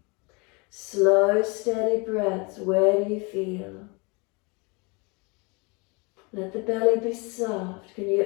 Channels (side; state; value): right; quieter; 29.7 dB